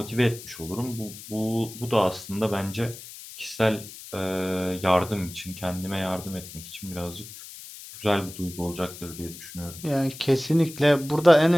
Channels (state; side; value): noise; left; hiss, 14 dB below the sound